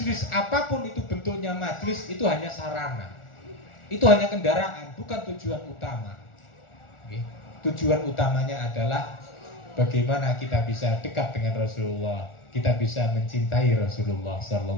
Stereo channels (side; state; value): right; late; 1.4 ms